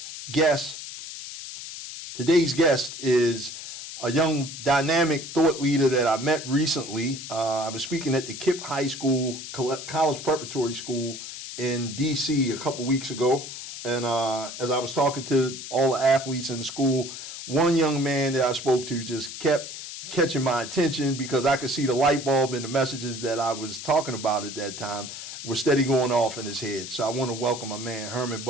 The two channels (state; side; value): noise; left; hiss, 10 dB below the sound